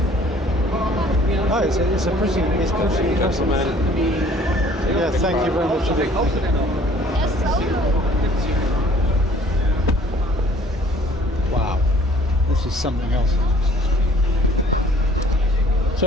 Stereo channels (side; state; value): both; normal; correlation 0.55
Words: Oh, it's pretty impressive. Gentlemen. Yeah, thank you very much indeed. Wow, this is something else. So